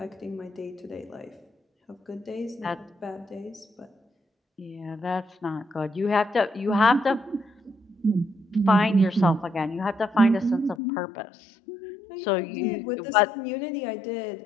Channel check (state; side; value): drops out; right; at 10.8 s